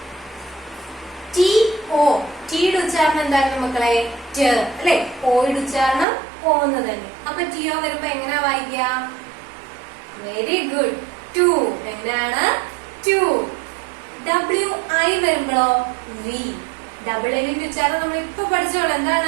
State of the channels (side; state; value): left; drops out; at 6.1 s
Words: ടി ഒ, ടിയുടെ ഉച്ചാരണം എന്തായിരുന്നു മക്കളെ? ട് അല്ലെ? ഓയുടെ ഉച്ചാരണം ഓന്ന് തന്നെ. അപ്പൊ ടി ഒ വരുമ്പോ എങ്ങനെയാ വായിക്കുക? വെരി ഗുഡ്, ടു. എങ്ങനെയാണ്? ടു. ഡബ്ല്യു ഐ വരുമ്പോഴോ വി. ഡബിൾ എല്ലിന്റെ ഉച്ചാരണം നമ്മൾ ഇപ്പൊ പഠിച്ചോളൂ.